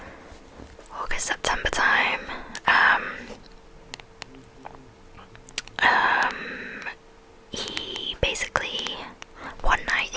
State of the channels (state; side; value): identical; both; correlation 1.00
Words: September time, he basically, one night